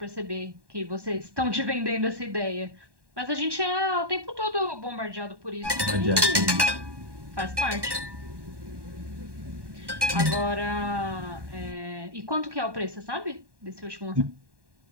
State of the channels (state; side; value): late; left; 1.1 ms